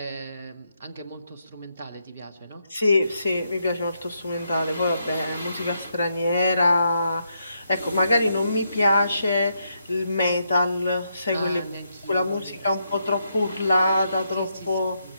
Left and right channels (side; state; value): both; inverted; correlation -0.80